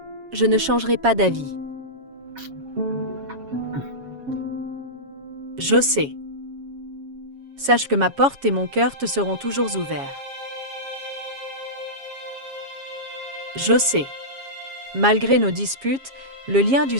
Je ne changerai pas d'avis. Je sais. Sache que ma porte et mon cœur te seront toujours ouverts. Je sais. Malgré nos disputes, le lien du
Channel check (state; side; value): late; left; 7.3 ms